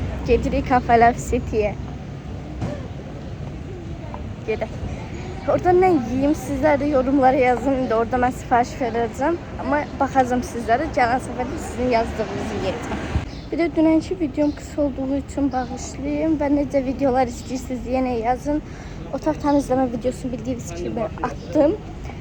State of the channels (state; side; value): identical; both; correlation 1.00